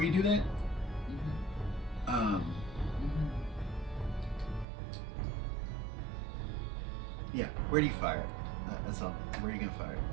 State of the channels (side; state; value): left; drops out; at 4.7 s